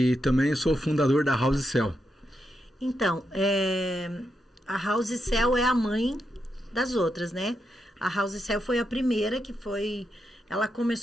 também sou fundador da House Cell. Então, a House Cell é a mãe das outras, né? A House Cell foi a primeira que foi... Ela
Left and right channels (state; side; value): normal; both; correlation 0.84